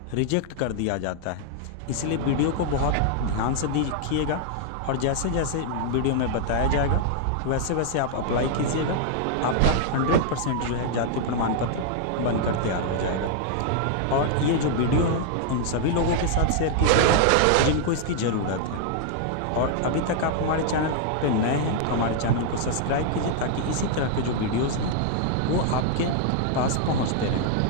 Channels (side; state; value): both; different; correlation 0.00